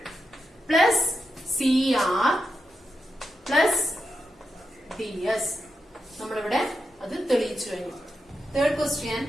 plus CR plus DS. നമ്മളിവിടെ അത് തെളിയിച്ചു കഴിഞ്ഞു. Third question.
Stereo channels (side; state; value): both; normal; correlation 0.86